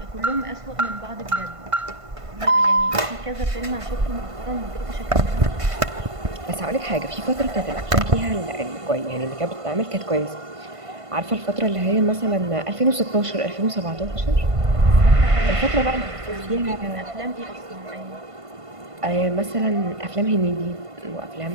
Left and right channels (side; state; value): left; late; 1.5 ms